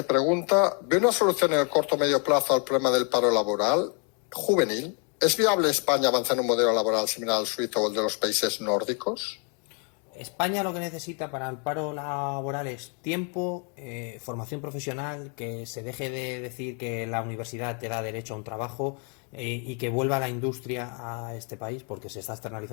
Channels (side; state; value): right; quieter; 38.3 dB